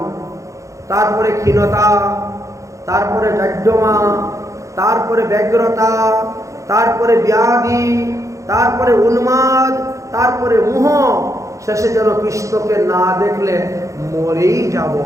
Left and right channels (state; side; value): late; left; 0.15 ms